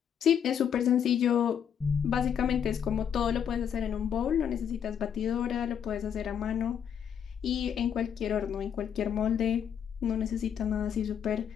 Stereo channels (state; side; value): quieter; right; 8.3 dB